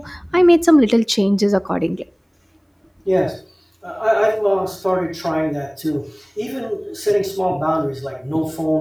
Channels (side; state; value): both; identical; correlation 1.00